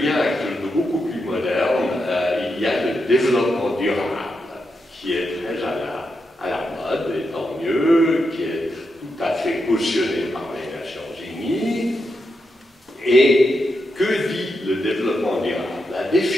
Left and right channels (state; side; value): normal; both; correlation 0.85